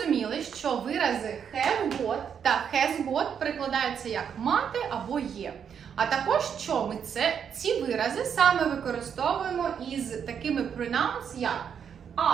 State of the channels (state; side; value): quieter; left; 7.7 dB